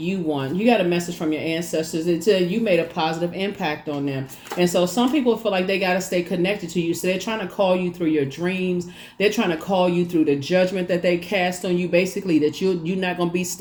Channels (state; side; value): identical; both; correlation 1.00